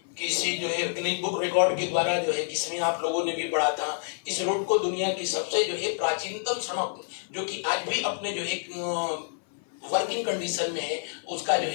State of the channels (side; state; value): right; silent; 56 dB below the other